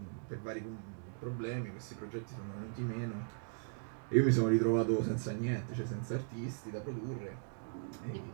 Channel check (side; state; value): left; silent; digital silence